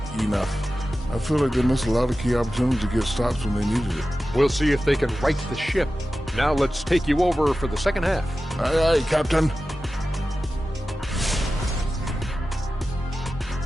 enough. I feel like they missed a lot of key opportunities to get stops when they needed it. We'll see if they can right the ship. Now let's take you over for the second half. Aye, aye, Captain.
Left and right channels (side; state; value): both; normal; correlation 0.94